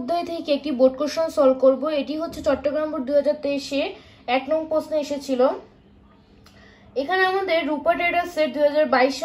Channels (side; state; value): both; identical; correlation 1.00